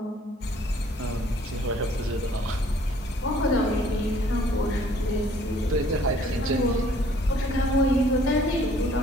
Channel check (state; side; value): normal; both; correlation 0.59